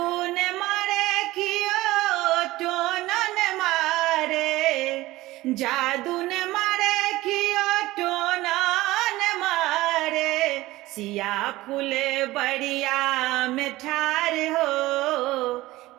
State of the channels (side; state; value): left; quieter; 18.1 dB